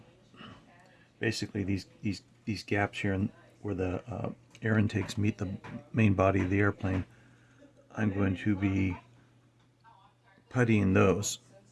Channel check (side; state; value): both; identical; correlation 1.00